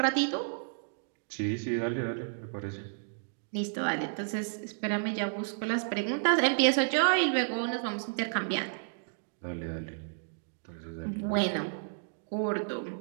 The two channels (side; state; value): left; silent; digital silence